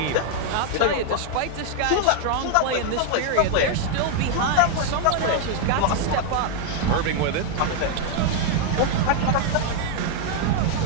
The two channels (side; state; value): both; different; correlation 0.00